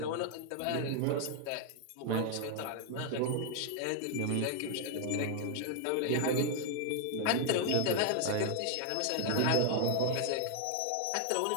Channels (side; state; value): both; different; correlation 0.00